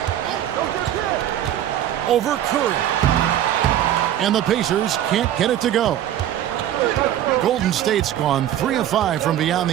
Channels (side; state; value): left; quieter; 11.5 dB